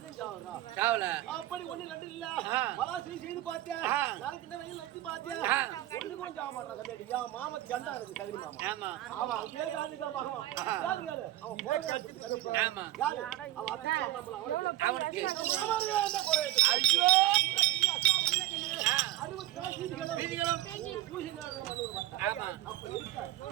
சாவறா. சாவல அப்படி ஒண்ணு ரெண்டு இல்ல ஆ. பலாசையும் செய்து பார்த்தேன் ஆ. நாளைக்கு இந்த வெயில் நச்சு பார்த்தேன் ஆ. ஒண்ணு கூட சாவ மாட்டான் கம்மியாட்டி என் மாமா கண்டா இருக்கு சகரி மாமா ஆமா அவன் அப்படியே காதுக்கா மகன் யாரு கேளு அவன் போட்டு கட்டிட்டு ஆமா யாரு அவன் அத்தை அம்மா அவனுக்கு என்ன குறை ஐயோ ஆ. 60 சீதிகளும் வீதிகளும் பூசி நேரம் மண்ணூர் மாட்டான் ஆமா அப்ப இருக்கா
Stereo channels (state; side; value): quieter; left; 15.2 dB